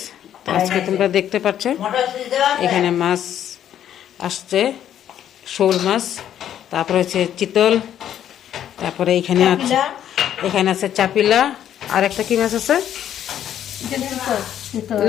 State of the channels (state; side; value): quieter; right; 10.5 dB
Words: আজকে তোমরা দেখতে পাচ্ছ এখানে মাছ আসছে, শোল মাছ, তারপরে হচ্ছে চিতল, তারপরে এখানে আছে চাপিলা, আর একটা কি মাছ আছে